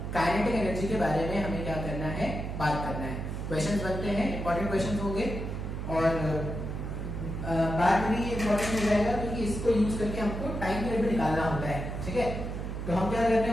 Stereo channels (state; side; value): noise; right; hum, 5 dB below the sound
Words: काइनेटिक एनर्जी के बारे में हमें क्या करना है, बात करना है। क्वेश्चंस बनते हैं, इंपॉर्टेंट क्वेश्चंस होंगे और बात भी इंपॉर्टेंट हो जाएगा क्योंकि इसको यूज करके हमको टाइम पीरियड भी निकालना होता है, ठीक है। तो हम क्या करने